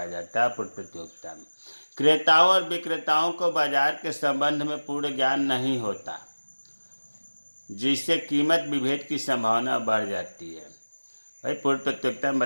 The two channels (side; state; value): both; inverted; correlation -1.00